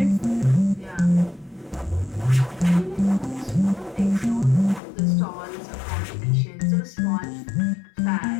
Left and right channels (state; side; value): drops out; right; at 4.8 s